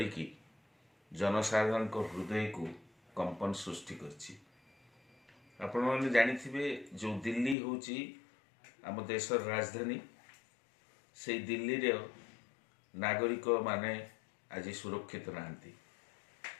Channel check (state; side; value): drops out; right; at 7.6 s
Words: जनसाधारण हृदय को कंपन सृष्टि करछि। आपण माने जानिथिबे जो दिल्ली होची आम देशर राजधानी, से दिल्ली रे नागरिक माने आज सुरक्षित नाहंती।